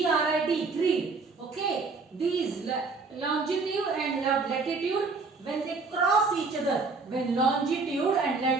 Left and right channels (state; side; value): quieter; left; 4.1 dB